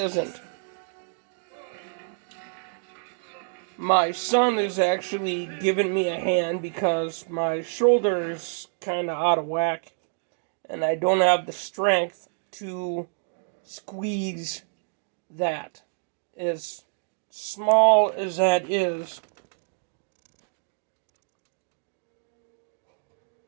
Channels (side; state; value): left; silent; digital silence